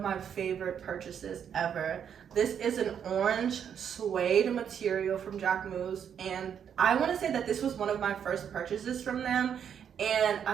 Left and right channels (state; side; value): quieter; left; 8.2 dB